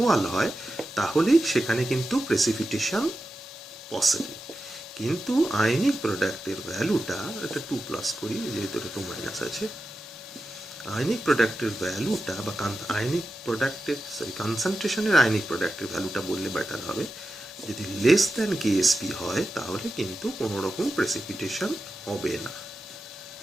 হয়, তাহলে সেখানে কিন্তু প্রেসিপিটেশন পসিবল। কিন্তু আয়নিক প্রোডাক্টের ভ্যালুটা, এটা 2+ করি যেহেতু এটা 2- আছে, আয়নিক প্রোডাক্টের ভ্যালুটা বা আয়নিক প্রোডাক্টের কনসেন্ট্রেশনের আয়নিক প্রোডাক্টের ভ্যালুটা বললে বেটার হবে, যদি লেস দ্যান কেএসপি হয় তাহলে কিন্তু কোনো রকম প্রেসিপিটেশন হবে না।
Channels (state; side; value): normal; both; correlation 0.92